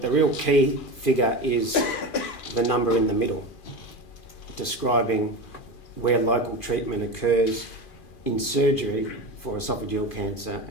the real key figure is the number in the middle, describing where local treatment occurs in surgery for esophageal cancer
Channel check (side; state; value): right; late; 2.4 ms